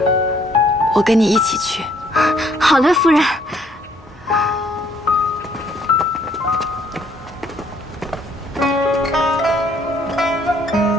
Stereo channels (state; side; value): normal; both; correlation 0.65